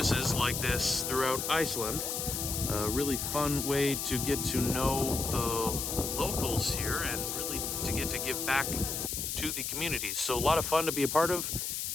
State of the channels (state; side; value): noise; left; hiss, 2 dB below the sound